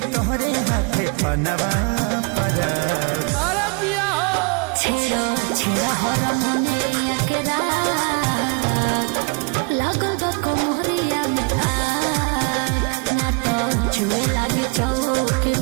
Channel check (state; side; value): quieter; left; 31.4 dB